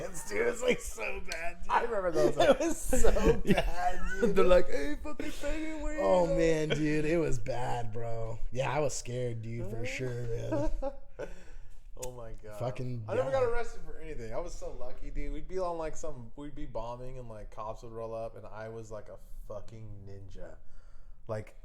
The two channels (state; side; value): identical; both; correlation 1.00